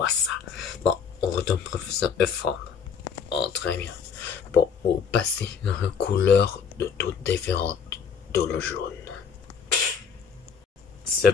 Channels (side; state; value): right; quieter; 6.5 dB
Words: ça. Bon, on retourne professeur forme. Oh, très bien. Bon, au passé, une couleur de toutes différentes de le jaune.